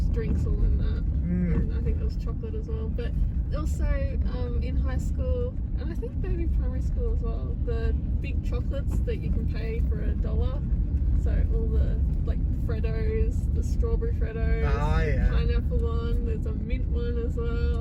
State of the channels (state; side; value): identical; both; correlation 1.00